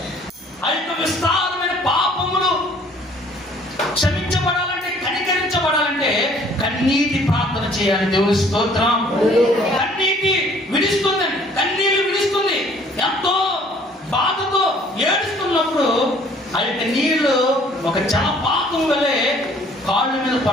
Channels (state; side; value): normal; both; correlation 0.57